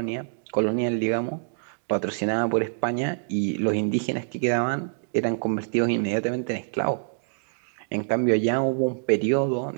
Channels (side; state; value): left; silent; digital silence